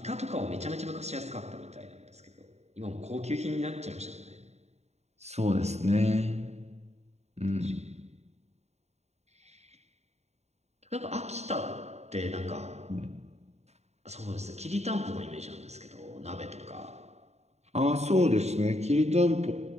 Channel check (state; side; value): late; left; 0.32 ms